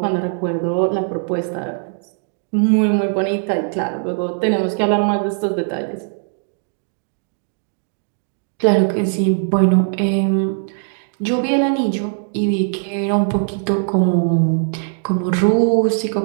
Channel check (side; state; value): left; silent; 61 dB below the other